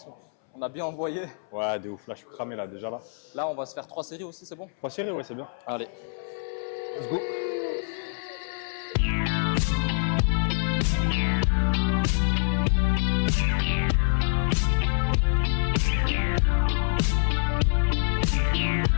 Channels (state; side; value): silent; right; 61 dB below the other